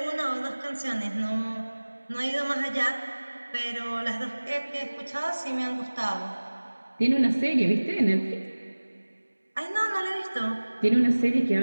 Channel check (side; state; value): both; inverted; correlation -1.00